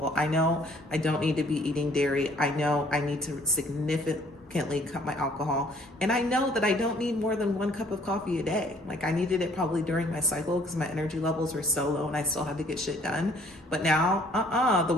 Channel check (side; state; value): both; normal; correlation 0.60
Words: I know I don't need to be eating dairy. I know I need to significantly cut my alcohol. And I know that I don't need more than 1 cup of coffee a day. Like I needed it probably during my cycle because my energy levels were so low and I still had to get shit done. But now, the